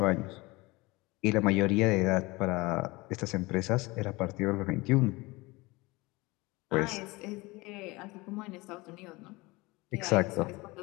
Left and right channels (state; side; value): quieter; right; 22.8 dB